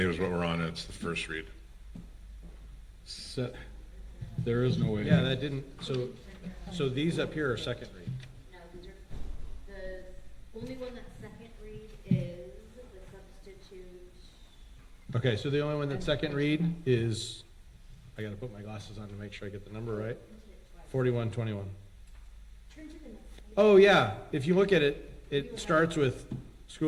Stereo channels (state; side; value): identical; both; correlation 1.00